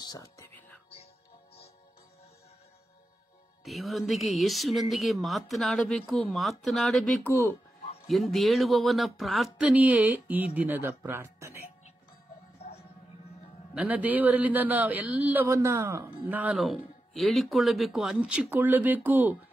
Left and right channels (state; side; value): normal; both; correlation 0.90